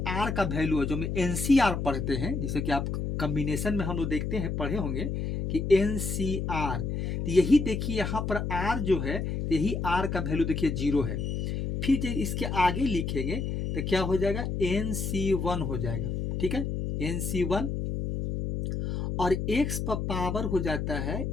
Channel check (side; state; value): left; noise; hum, 2 dB below the sound